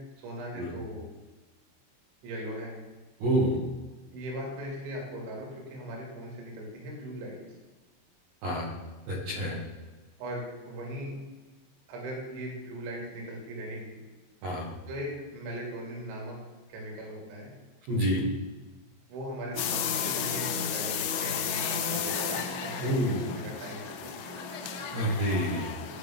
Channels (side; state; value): left; late; 22 ms